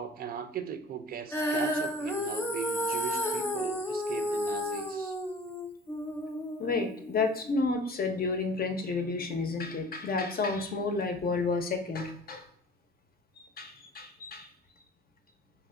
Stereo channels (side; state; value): both; normal; correlation 0.45